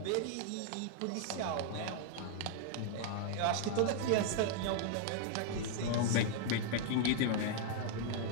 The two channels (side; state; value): both; different; correlation 0.00